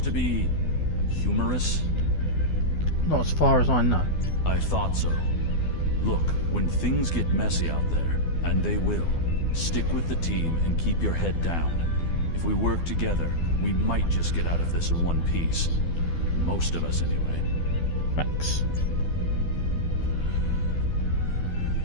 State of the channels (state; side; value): late; right; 12 ms